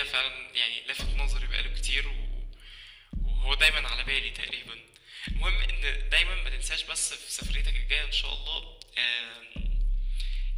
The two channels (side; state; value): both; identical; correlation 1.00